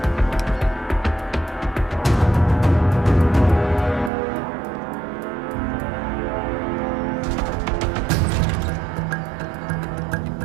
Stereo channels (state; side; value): drops out; left; at 4.1 s